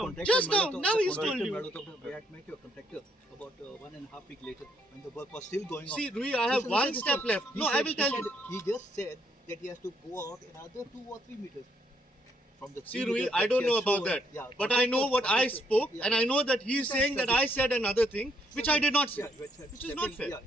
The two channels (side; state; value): both; normal; correlation 0.72